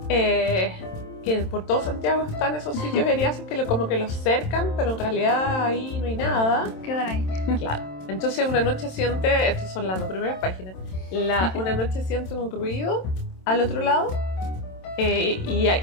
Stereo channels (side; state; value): right; late; 27 ms